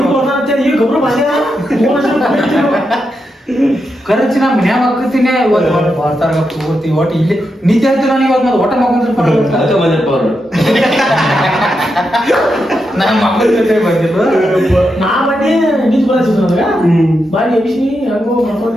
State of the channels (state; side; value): normal; both; correlation 0.85